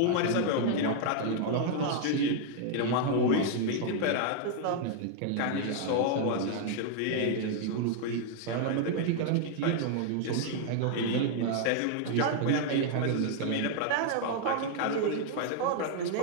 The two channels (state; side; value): different; both; correlation 0.00